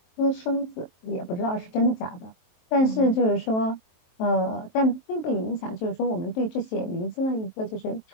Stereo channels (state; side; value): late; right; 23 ms